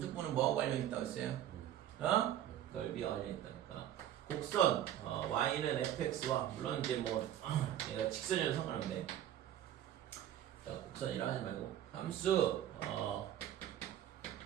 뭐하고 관련 있다고 했어요? 넓이와 관련 있다니까. 곡선 y는 fx와 물론 이제 뭐 얘가 직선이라도 상관없는데, 자, 곡선이라 하지 말고 함수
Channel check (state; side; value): quieter; left; 11.5 dB